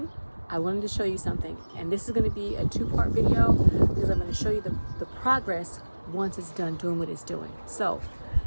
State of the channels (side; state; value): both; inverted; correlation -1.00